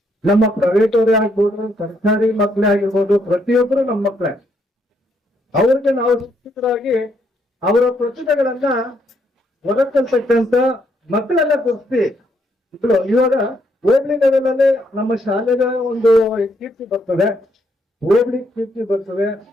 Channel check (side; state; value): both; normal; correlation 0.74